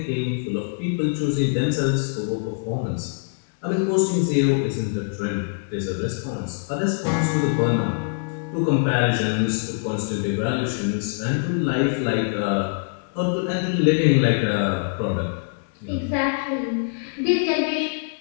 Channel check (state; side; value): silent; right; digital silence